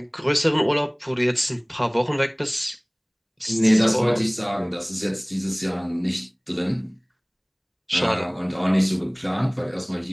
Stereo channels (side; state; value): both; identical; correlation 1.00